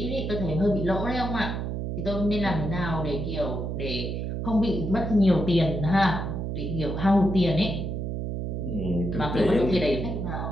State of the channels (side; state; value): right; noise; hum, 3 dB below the sound